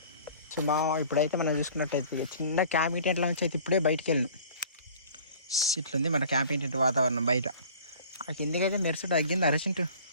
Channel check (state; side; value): inverted; both; correlation -0.47